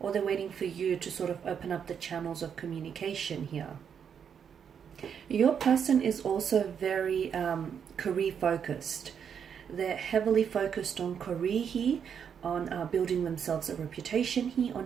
or they're waiting for you to sort of open up the channels of communication here. Your person is also very career focused. They're heavily focused on career here, on building themselves a reputation here,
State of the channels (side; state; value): left; quieter; 7.6 dB